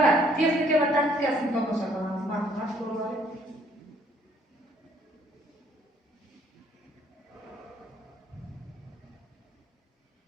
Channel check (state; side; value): normal; both; correlation 0.63